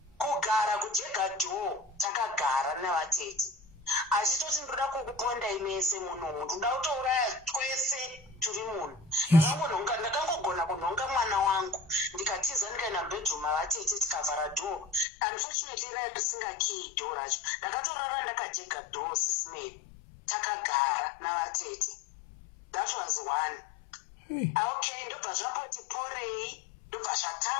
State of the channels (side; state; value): right; drops out; at 15.1 s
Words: Kugara kujega door takagara navatete. Achitoti ndoda kukuponda imese munhu, ndoda kutouraya twese turi munhu. Ndakangogona kunhonga mwana wangu. Ndikatiza ndikaenda bedroom mavatete tikavhara door. Unfortunately risinga key door racho. Ndakatorara ndakajega door sisimeli. Takagara navatete. That was one. Okay, ndobva zvamboti porei, ndobva